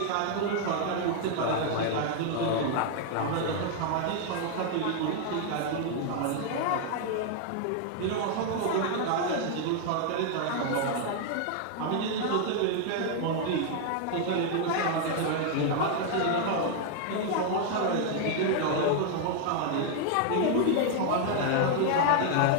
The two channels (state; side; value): different; both; correlation 0.00